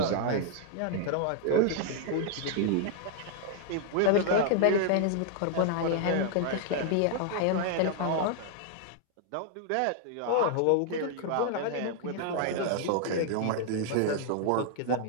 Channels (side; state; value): both; different; correlation 0.00